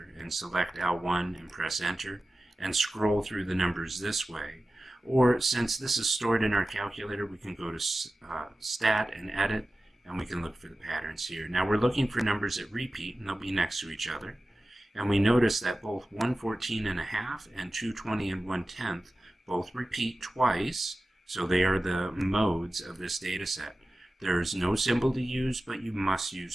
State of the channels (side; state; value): both; normal; correlation 0.95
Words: and select L1 and press enter, and scroll through the numbers this way. Or since this is stored in our calculator, we can go to Stat and Edit, and we can look for the patterns here. Now we're looking for numbers that repeat, and they'll be next to each other. And we notice that both 114.5 and 220 and 1/10 both repeat twice, so they are the modes of this data set. There is no symbol to use, but you must